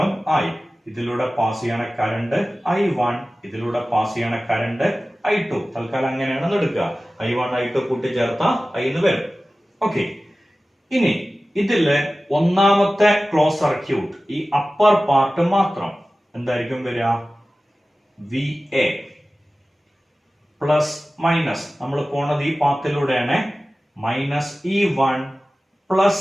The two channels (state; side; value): normal; both; correlation 0.96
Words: I, ഇതിലൂടെ പാസ് ചെയ്യണ കറണ്ട് I1, ഇതിലൂടെ പാസ് ചെയ്യണ കറണ്ട് I2. തൽക്കാലം അങ്ങനെയാണ് എടുക്കുക, I1 I2 കൂട്ടിച്ചേർത്ത I എന്ന് വരും. ഓക്കെ, ഇനി ഇതില് ഒന്നാമത്തെ ക്ലോസ് സർക്യൂട്ട്, ഈ അപ്പർ പാർട്ട് മാത്രം എന്തായിരിക്കും വരിക, VA പ്ലസ് മൈനസ്, നമ്മൾ പോണത് ഈ പാത്തിലൂടെയാണ്, minus E1